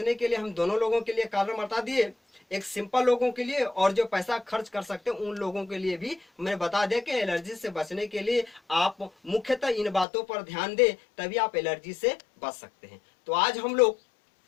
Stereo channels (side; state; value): right; drops out; at 10.1 s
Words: के लिए हम दोनों लोगों के लिए कारण बता दिए, एक सिंपल लोगों के लिए और जो पैसा खर्च कर सकते हैं उन लोगों के लिए भी मैंने बता दिया कि एलर्जी से बचने के लिए आप मुख्यतः इन बातों पर ध्यान दें, तभी आप एलर्जी से बच सकते हैं। तो आज हम लोग